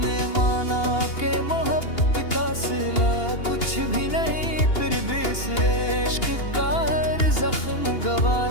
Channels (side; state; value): right; late; 2.8 ms